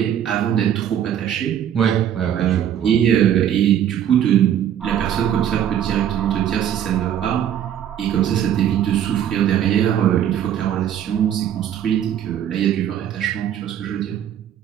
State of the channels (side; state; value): left; quieter; 10.1 dB